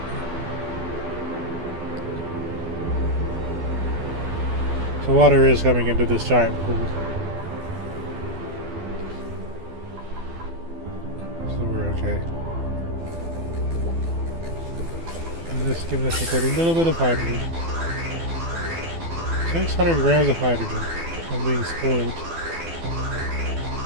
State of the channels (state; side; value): late; left; 12 ms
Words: So water is coming into this giant pool. So we're okay. And this is giving us a little bit of hydrogen. 600 grams of hydrogen. I'm being spoiled.